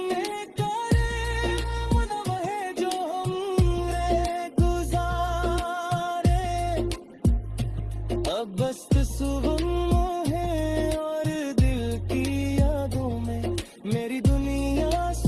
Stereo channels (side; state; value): both; identical; correlation 1.00